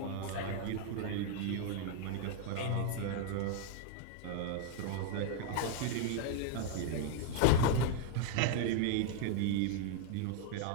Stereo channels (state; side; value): different; both; correlation 0.00